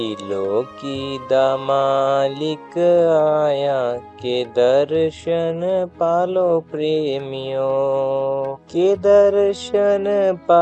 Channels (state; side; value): identical; both; correlation 1.00